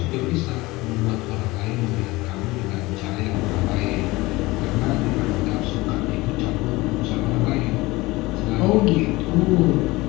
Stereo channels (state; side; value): quieter; right; 21.1 dB